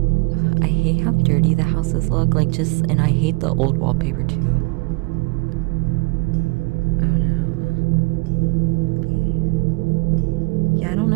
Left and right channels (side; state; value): left; quieter; 27.5 dB